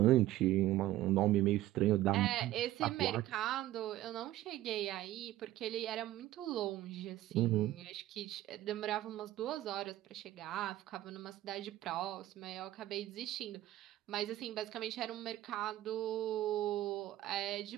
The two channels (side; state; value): left; quieter; 14.9 dB